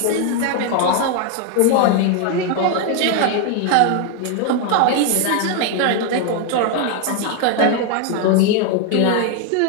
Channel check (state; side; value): different; both; correlation 0.01